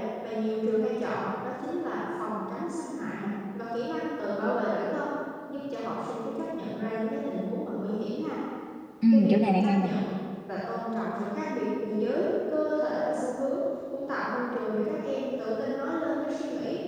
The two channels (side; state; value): both; identical; correlation 1.00